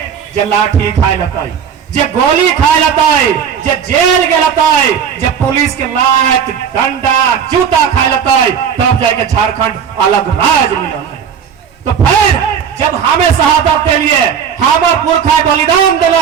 जे लाठी खाए लताई, जे गोली खाए लताई, जे जेल के लताई, जे पुलिस के लात डंडा जूता खाए लताई, तब जाके झारखंड अलग राज्य मिलल है। तो फिर जब हमें शहादत के लिए हमार पुरखा बलिदान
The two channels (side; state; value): left; quieter; 7.6 dB